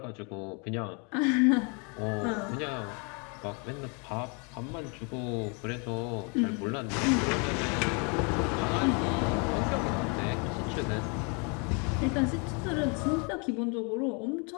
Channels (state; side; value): quieter; right; 34.1 dB